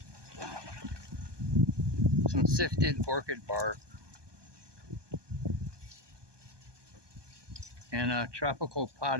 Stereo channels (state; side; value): late; left; 1.2 ms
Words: some sifted orchid bark, and a tropical